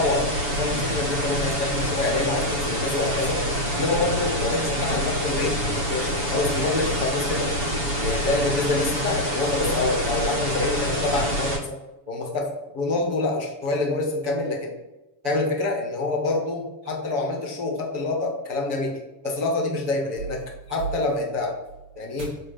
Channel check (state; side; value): late; left; 7.0 ms